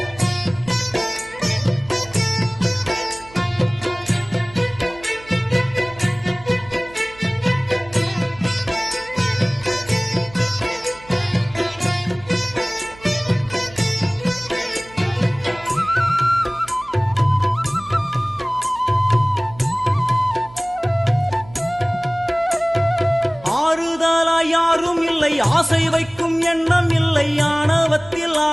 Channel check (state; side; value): noise; right; hum, 21 dB below the sound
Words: யாரும் இல்லை, ஆசை வைக்கும் எண்ணம் இல்லை, ஆணவத்தில்